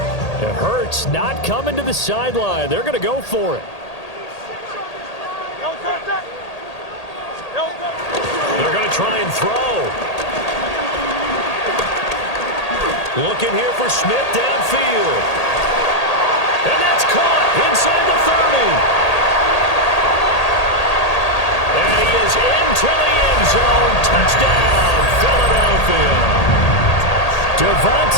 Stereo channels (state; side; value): late; right; 1.8 ms